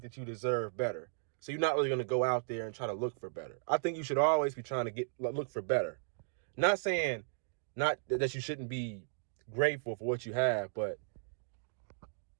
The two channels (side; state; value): left; silent; digital silence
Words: that you deserve better. So you're not really going to go out there and try to look for better. I think you should always be trying to look for better. Not saying not that you shouldn't be grateful for what you have, but